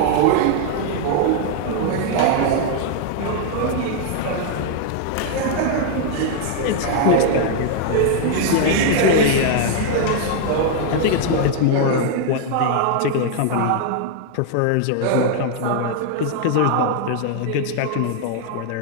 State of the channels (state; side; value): different; both; correlation 0.00